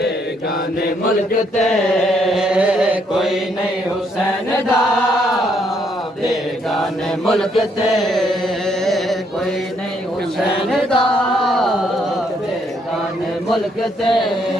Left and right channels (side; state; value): both; normal; correlation 0.71